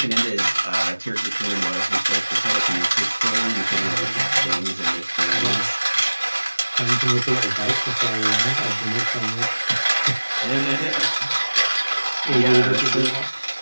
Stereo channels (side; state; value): both; inverted; correlation -1.00